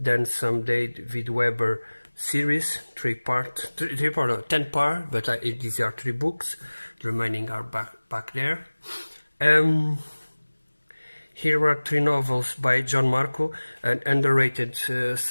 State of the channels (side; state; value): both; inverted; correlation -1.00